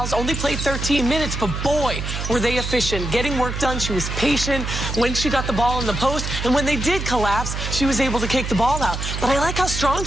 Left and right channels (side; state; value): right; noise; hum, 4 dB below the sound